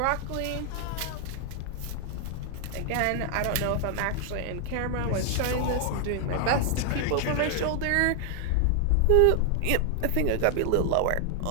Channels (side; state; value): both; different; correlation 0.00